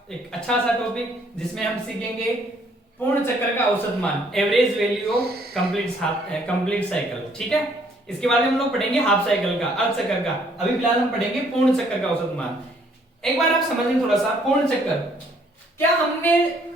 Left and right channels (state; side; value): normal; both; correlation 0.64